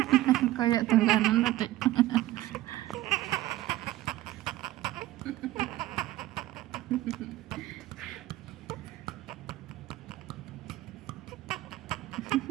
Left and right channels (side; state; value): left; quieter; 16.0 dB